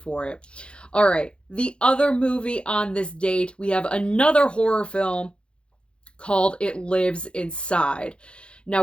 for it. All right, the other movie on this date, we have another horror film called It Lives Inside. Now,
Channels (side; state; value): right; late; 0.056 ms